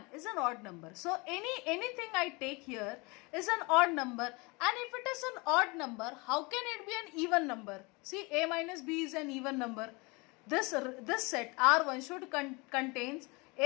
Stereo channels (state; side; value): quieter; right; 27.0 dB